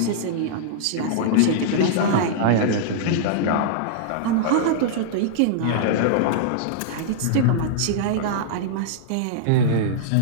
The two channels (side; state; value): both; different; correlation -0.02